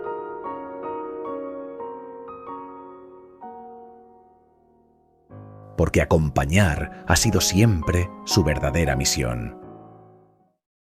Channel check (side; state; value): both; identical; correlation 1.00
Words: Porque acompañar ha sido siempre su verdadera misión.